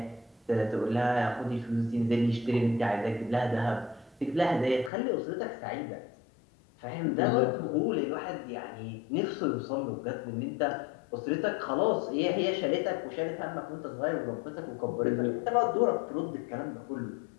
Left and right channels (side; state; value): right; drops out; at 4.9 s